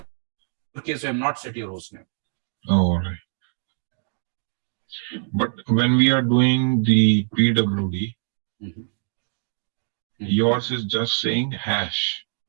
case, you have not set your host name. Oh, all right. But when we are doing the PWD, Mhm. yours is just saying hash.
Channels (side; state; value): left; silent; digital silence